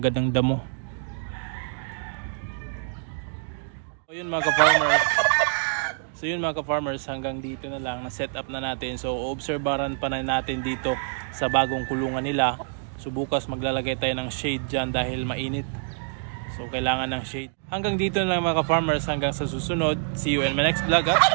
ng damo. So yun mga ka-farmers, hanggang dito na lang, na set up na natin. So obserbaran pa na natin dito sa bagong kulungan nila. So bukas maglalagay tayo ng shade dyan dahil mainit. So kailangan ng shade. Hanggang dito na lang mga ka-farmers, hanggang sa susunod. See you in my next vlog at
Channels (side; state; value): left; silent; digital silence